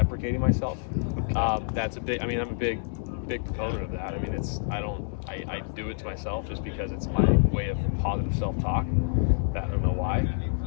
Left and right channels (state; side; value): silent; right; digital silence